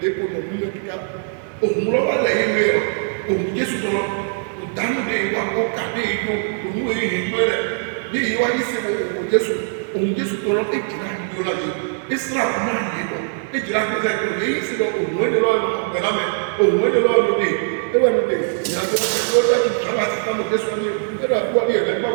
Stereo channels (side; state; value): left; silent; 63 dB below the other